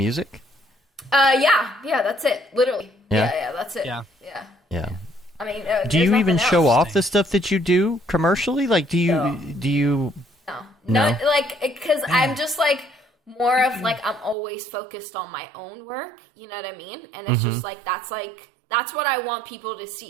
Yeah, that's it. Literally. Yeah? Yeah, that's it. Yeah. Yeah. I mean, Do you even show off the stuff that you do commercially? Like, do you? No, like, because I'm just like more of like I'm always focused on my own work. You know what I mean? And it's just like that's what I want people to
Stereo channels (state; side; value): drops out; left; at 14.4 s